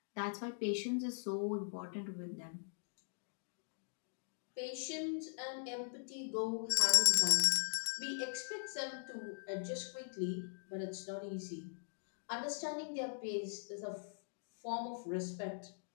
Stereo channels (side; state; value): right; silent; digital silence